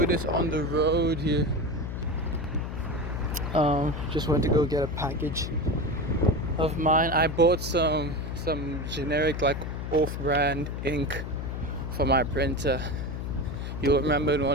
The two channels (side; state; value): left; noise; hum, 5 dB below the sound